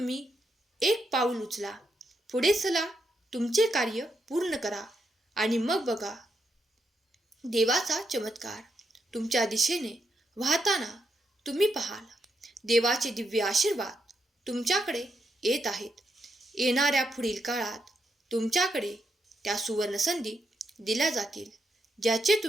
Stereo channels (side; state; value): both; normal; correlation 0.81